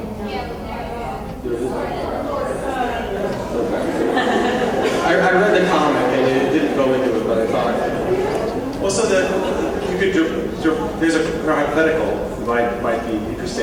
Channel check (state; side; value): identical; both; correlation 1.00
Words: about? There is? I read the comic and it didn't go into it, but I thought. Well, so there's a hypothetical that might be